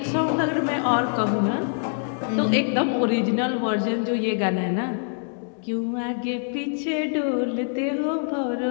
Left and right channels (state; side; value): silent; right; digital silence